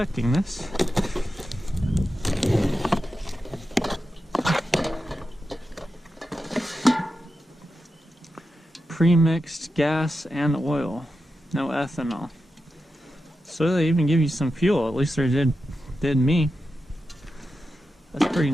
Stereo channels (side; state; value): both; normal; correlation 0.90